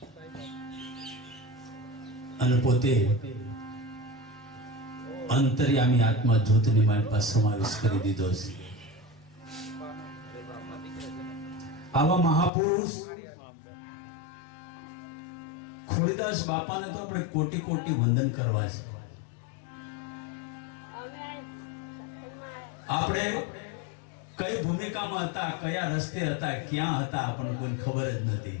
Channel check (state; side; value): drops out; right; at 12.5 s